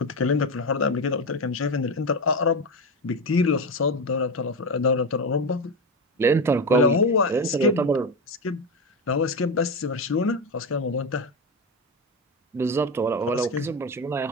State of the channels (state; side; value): normal; both; correlation 0.16